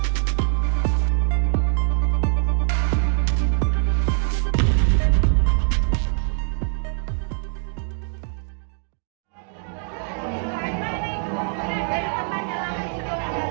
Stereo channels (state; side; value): silent; left; digital silence